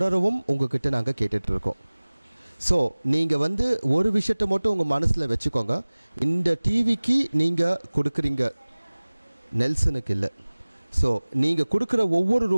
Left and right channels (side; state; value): both; inverted; correlation -1.00